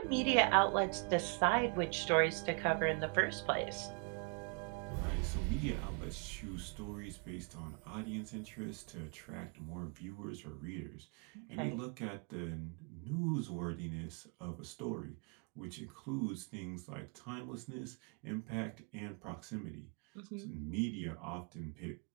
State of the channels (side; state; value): left; quieter; 36.4 dB